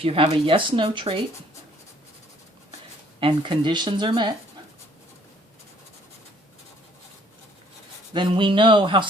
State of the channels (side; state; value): both; normal; correlation 0.61